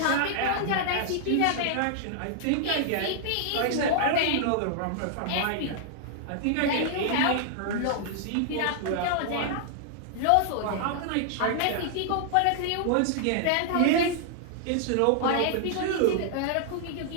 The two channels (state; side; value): different; both; correlation -0.01